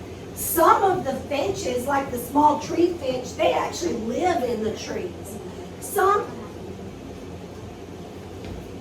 Some of the finches, like the small tree finch, they actually live in the trees. Some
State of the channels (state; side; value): identical; both; correlation 1.00